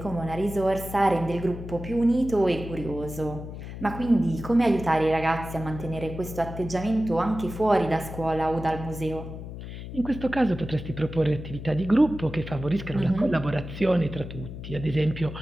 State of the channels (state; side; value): noise; left; hum, 10 dB below the sound